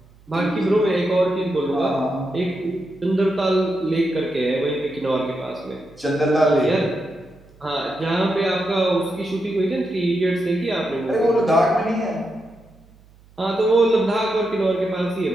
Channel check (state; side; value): noise; right; hum, 27 dB below the sound